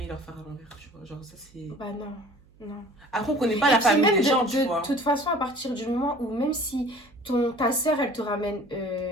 leur faire à l'envers, tu vois. Genre, ça, c'est... Bah non. Après, on connaît pas la famille des gens, tu vois. De toute façon, à partir du moment où même si ta sœur, elle te ramène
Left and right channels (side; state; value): right; noise; hum, 29 dB below the sound